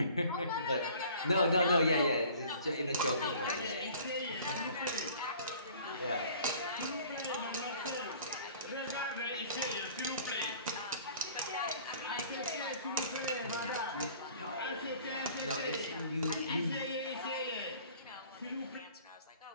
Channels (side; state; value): both; inverted; correlation -0.49